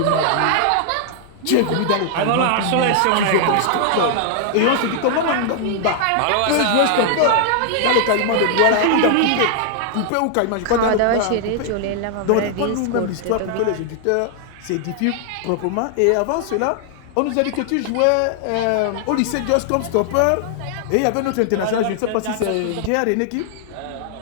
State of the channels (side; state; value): both; different; correlation 0.00